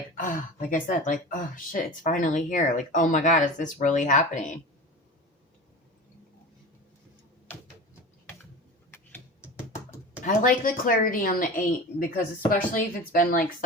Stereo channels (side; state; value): both; normal; correlation 0.31